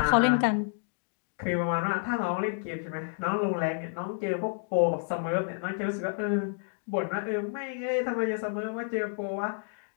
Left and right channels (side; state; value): right; silent; digital silence